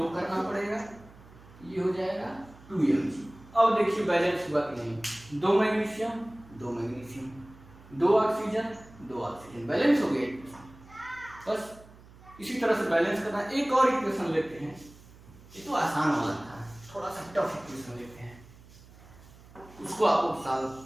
करना पड़ेगा, ये हो जाएगा 2Mg। अब देखिए बैलेंस हुआ कि नहीं, 2 मैग्नीशियम 2 ऑक्सीजन, बैलेंस हो गया। बस इसी तरह से बैलेंस करना। एक और इक्वेशन लेते हैं, ये तो आसान वाला था, थोड़ा सा टफ इक्वेशन लेते हैं, उसको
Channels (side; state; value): right; noise; hum, 22 dB below the sound